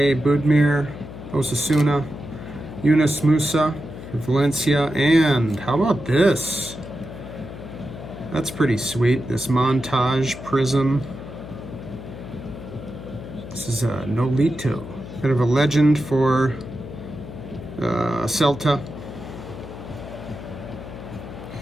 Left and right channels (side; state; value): left; noise; hum, 12 dB below the sound